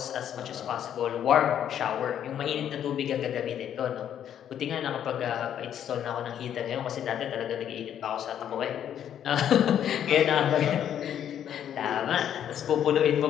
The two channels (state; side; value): quieter; right; 9.8 dB